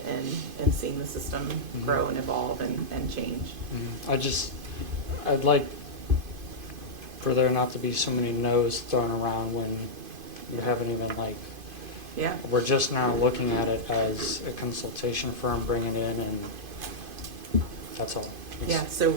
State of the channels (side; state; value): left; late; 2.5 ms